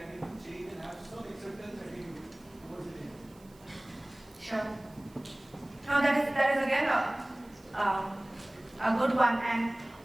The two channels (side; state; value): right; noise; hiss, 28 dB below the sound